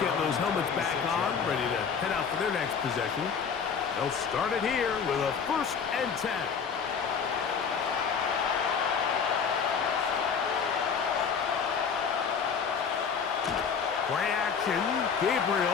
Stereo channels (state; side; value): quieter; right; 6.4 dB